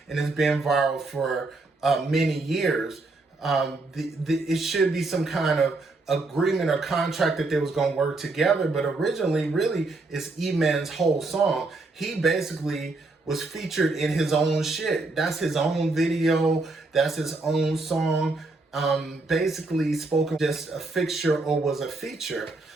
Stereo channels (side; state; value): left; quieter; 3.4 dB